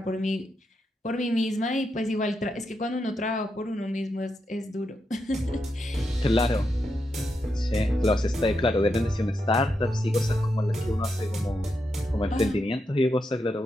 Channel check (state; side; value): normal; both; correlation 0.84